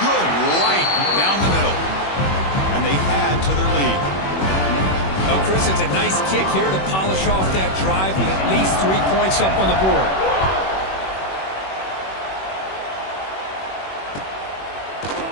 right down the middle. And they add to their lead. Oh, Chris, it's a nice kick here to polish off that drive with at least 3 points up on the board.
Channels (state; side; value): late; right; 21 ms